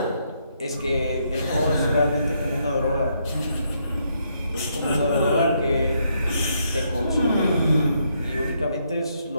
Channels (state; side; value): inverted; both; correlation -0.75